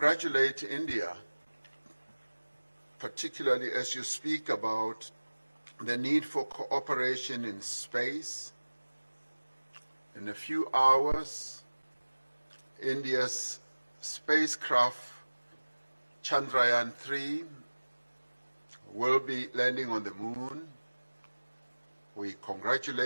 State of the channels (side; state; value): both; inverted; correlation -1.00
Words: India, particularly as you speak about the need for cooperation in space. In a few hours, India's spacecraft Chandrayaan-3 will be landing on the moon. We